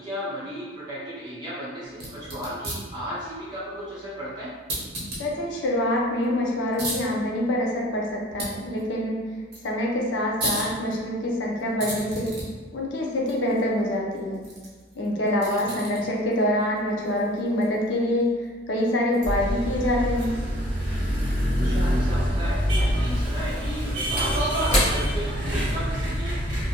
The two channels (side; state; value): both; normal; correlation 0.49